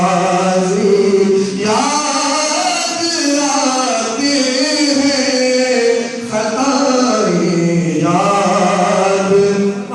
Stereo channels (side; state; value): both; identical; correlation 1.00